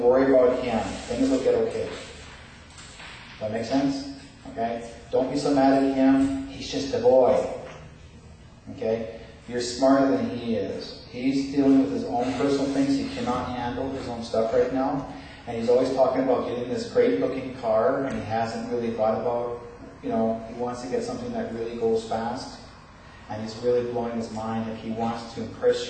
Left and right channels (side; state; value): both; identical; correlation 1.00